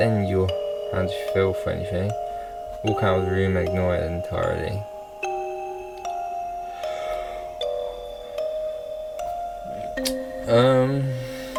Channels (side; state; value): both; identical; correlation 1.00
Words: your hand to feel for anything. Walk out of the room and ignore it entirely.